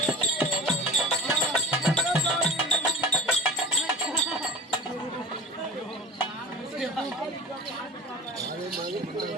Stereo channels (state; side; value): normal; both; correlation 0.34